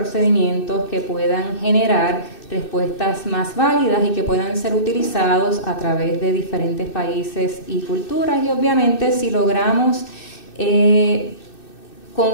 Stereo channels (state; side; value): late; right; 2.6 ms